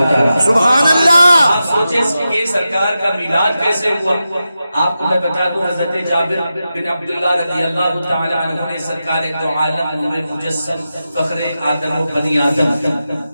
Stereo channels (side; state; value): both; inverted; correlation -0.91